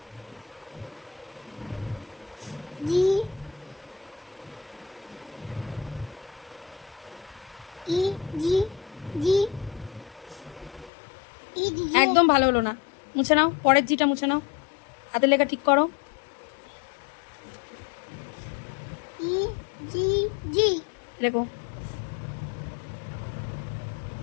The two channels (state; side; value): drops out; right; at 10.9 s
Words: জি ই জি জি ই দিদি একদম ভালো হলো না, মুছে নাও। পরের জিটা মুছে নাও, হাতের লেখা ঠিক করো। ই জি জি লেখো।